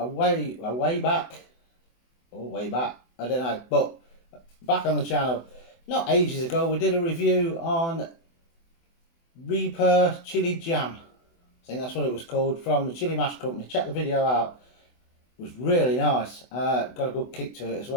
way back, I don't know, but back on the channel, not ages ago, we did a review on Reaper Chili Jam. I think that's what it was called, from the Chili Mash Company. Check the video out. It was really nice. Got a good kick to it as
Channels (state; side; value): late; right; 24 ms